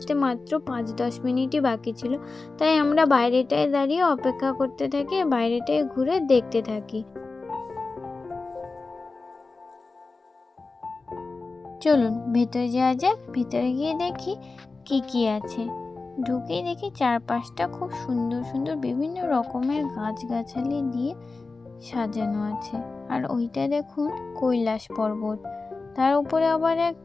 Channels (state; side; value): quieter; right; 3.8 dB